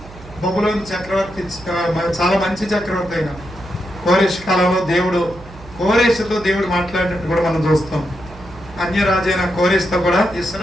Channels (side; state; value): right; noise; hum, 19 dB below the sound